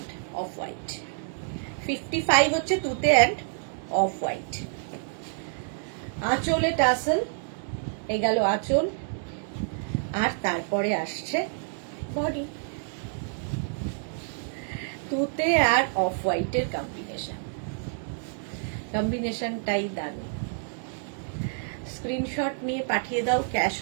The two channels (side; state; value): left; silent; digital silence